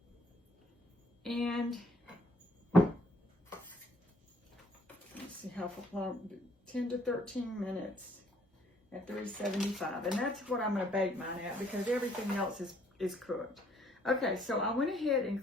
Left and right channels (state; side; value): normal; both; correlation 0.64